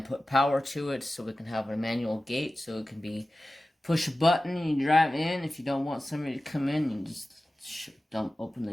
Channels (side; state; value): both; normal; correlation 0.95